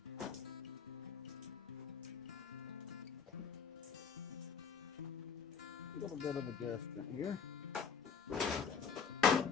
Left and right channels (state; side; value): quieter; right; 6.4 dB